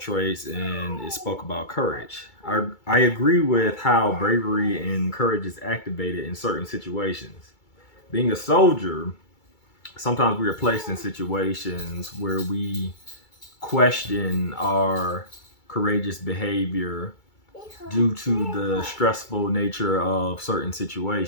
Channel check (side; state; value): right; late; 2.3 ms